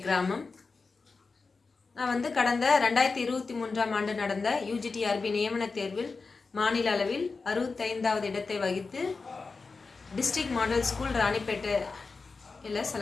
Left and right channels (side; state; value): right; quieter; 4.3 dB